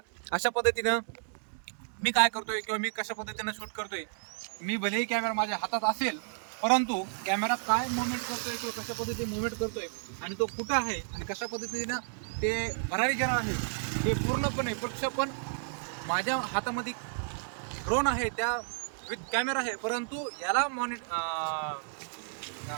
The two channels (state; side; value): silent; left; digital silence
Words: अशा पद्धतीनं मी काय करतोय किंवा मी कशा पद्धतीनं शूट करतोय, मी भलेही कॅमेरा माझ्या हातात असेल, परंतु कॅमेरा काय मुवमेंट करतोय किंवा कशा पद्धतीने मुवमेंट करतोय आणि तो कुठं आहे आणि कशा पद्धतीनं ते भरारी घेणार आहे हे पूर्णपणे प्रक्षेपण माझ्या हातामध्ये ड्रोन आहे, त्या विथ कॅमेरा आहे, परंतु याला काय